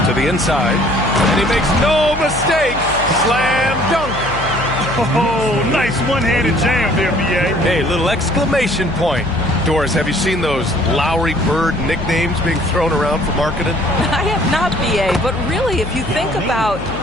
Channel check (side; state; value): left; noise; hum, 11 dB below the sound